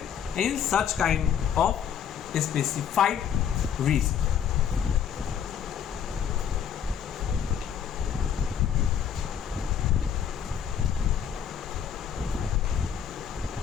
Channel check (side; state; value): right; quieter; 8.4 dB